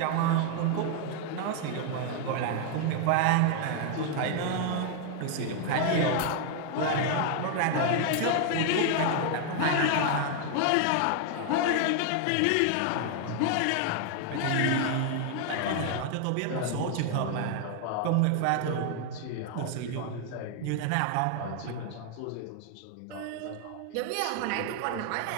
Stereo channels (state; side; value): different; both; correlation 0.00